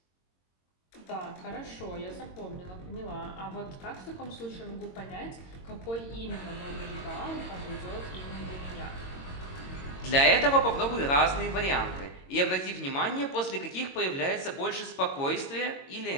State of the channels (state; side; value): late; right; 22 ms